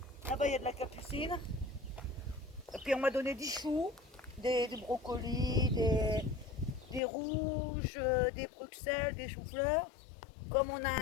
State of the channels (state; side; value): drops out; right; at 7.0 s